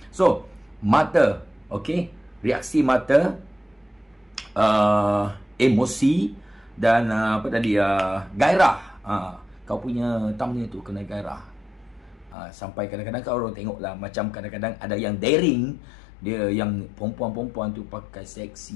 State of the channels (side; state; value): right; drops out; at 12.4 s